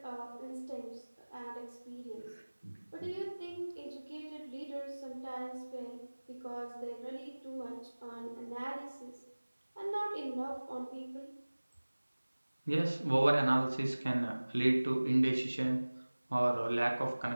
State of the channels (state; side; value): inverted; both; correlation -1.00